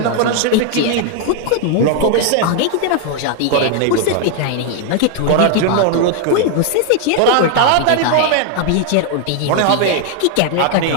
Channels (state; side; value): different; both; correlation 0.00